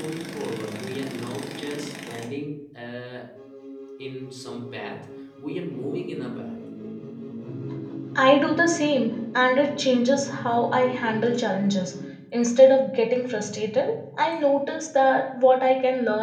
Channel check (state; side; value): identical; both; correlation 1.00